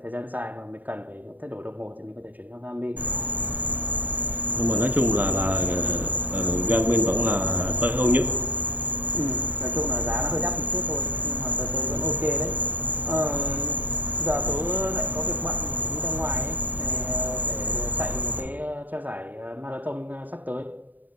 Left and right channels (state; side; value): late; left; 0.084 ms